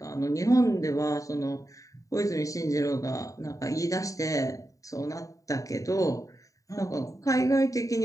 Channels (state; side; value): late; right; 0.16 ms